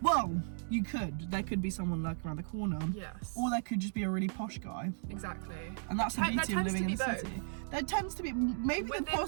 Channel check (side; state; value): left; silent; digital silence